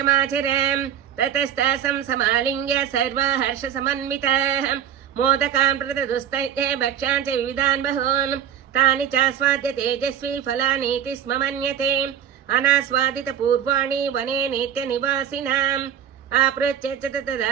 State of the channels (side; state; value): left; quieter; 9.3 dB